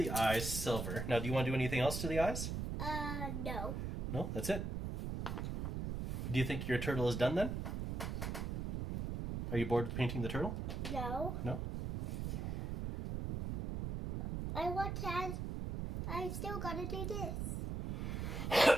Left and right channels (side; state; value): right; noise; rumble, 3 dB below the sound